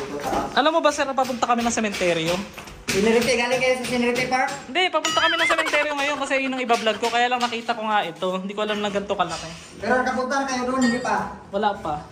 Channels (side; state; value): both; identical; correlation 1.00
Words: Alam mo ba, sir, papunta kami ng sementeryo? Sinirite, galing kayo sa Sinirite Park? Hindi, papunta kami ng sementeryo ngayon kasi yun ang iba-vlog ko. Kaya lang nakita ko nga ito. Hindi ko alam na ganito kalaki. Pero nakapunta kayo doon, hindi pa. Wala pa.